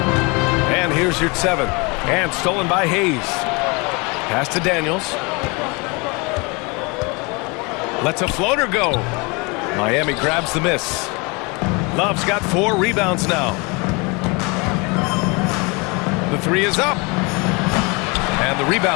And here's your 7. And stolen by Hayes. Pass to Daniels. Lets a floater go. Miami grabs the miss. Love's got 4 rebounds now. The 3 is up. And the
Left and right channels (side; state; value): right; quieter; 28.7 dB